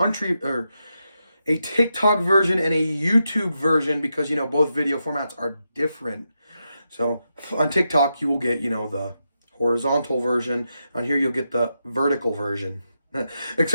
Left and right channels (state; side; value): inverted; both; correlation -0.86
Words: version and a YouTube version, because, you know, both video formats are different. So on TikTok, you will get, you know, the horizontal version. On here, you'll get the vertical version.